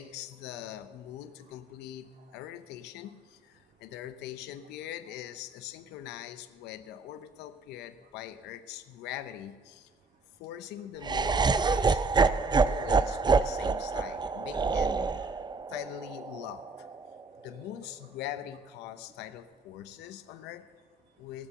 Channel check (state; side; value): quieter; left; 3.1 dB